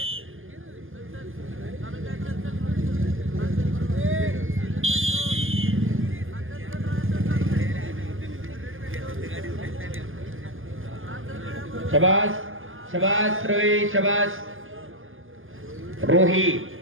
शबास शबास रवी शबास रोहित.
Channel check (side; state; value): left; late; 0.59 ms